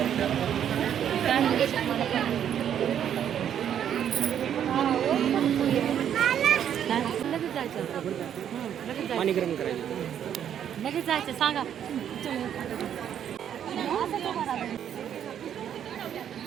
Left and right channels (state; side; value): quieter; left; 9.4 dB